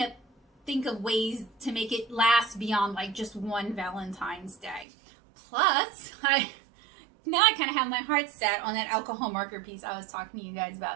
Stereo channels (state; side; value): drops out; left; at 4.9 s